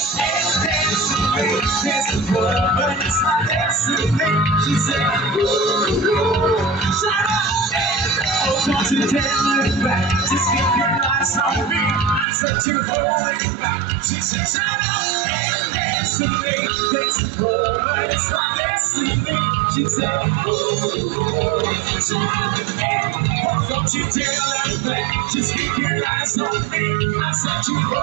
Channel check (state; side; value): drops out; left; at 12.2 s